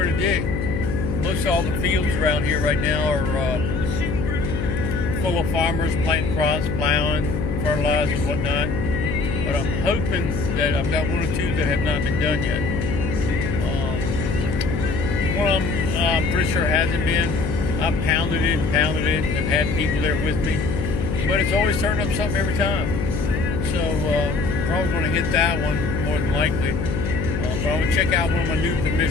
to dig. Most of all the fields around here right now are full of farmers planting crops, plowing, fertilizing, whatnot. But I'm hoping that I've got one or two that have not been done yet. One of them I'm pretty sure hasn't been. I've pounded it and have had people there with me. But it's always turned up something every time. So probably going to hit that one more than likely. But I'm going to check out one of my new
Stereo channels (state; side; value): noise; left; hum, 2 dB below the sound